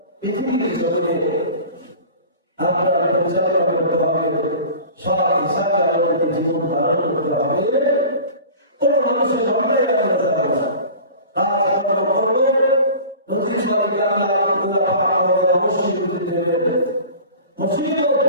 পৃথিবীর জগতে আপনার পরিচালনা করতে হবে, সৎ হিসাবে আমাদেরকে জীবন ধারণ করতে হবে। কোন মানুষের অন্যায় আমরা যাবো না। আমরা করবো নদীর সঙ্গে অবশ্যই বুঝতে হবে। মুসিবত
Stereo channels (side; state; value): both; inverted; correlation -0.40